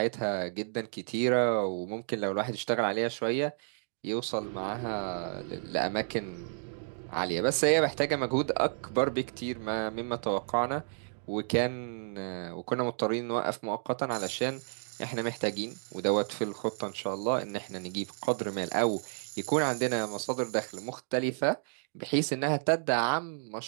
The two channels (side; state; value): left; silent; digital silence